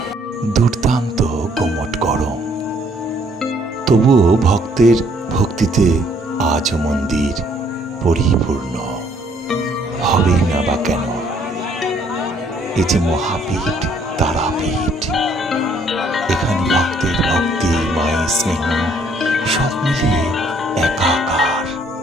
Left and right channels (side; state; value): both; normal; correlation 0.64